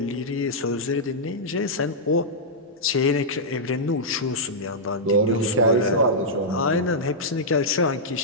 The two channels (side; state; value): both; normal; correlation -0.10